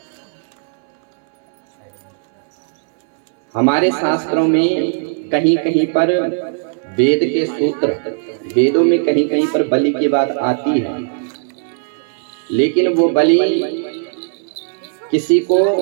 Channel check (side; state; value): left; silent; 68 dB below the other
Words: हमारे शास्त्रों में कहीं कहीं पर वेद के सूत्र, वेदों में कहीं कहीं पर बलि की बात आती है, लेकिन वो बलि किसी को